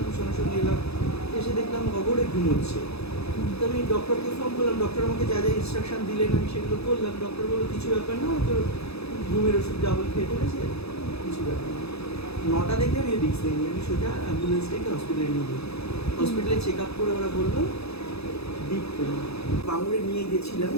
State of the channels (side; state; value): right; late; 0.79 ms